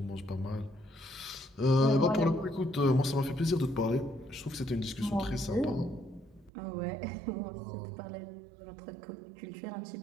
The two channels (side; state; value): left; drops out; at 6.5 s